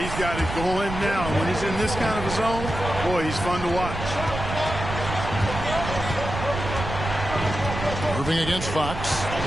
he's got it going now. When he's in this kind of a zone, boy, he's fun to watch. Irving against Fox.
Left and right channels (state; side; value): noise; right; rumble, 6 dB below the sound